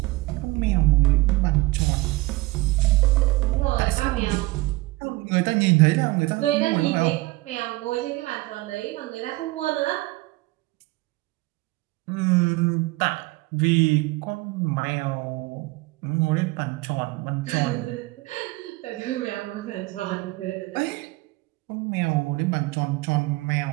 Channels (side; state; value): left; quieter; 20.9 dB